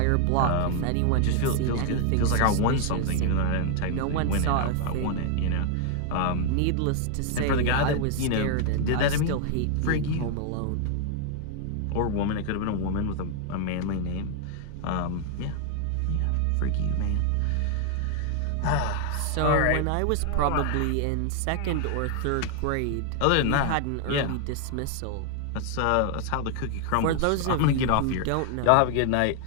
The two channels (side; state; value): both; different; correlation 0.00